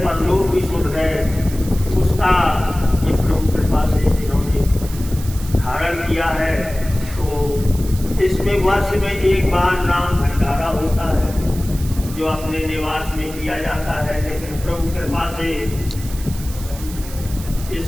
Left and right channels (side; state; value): right; noise; hiss, 15 dB below the sound